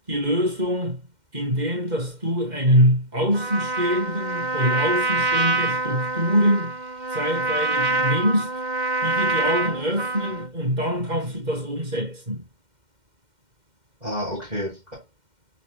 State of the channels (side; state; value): left; late; 2.1 ms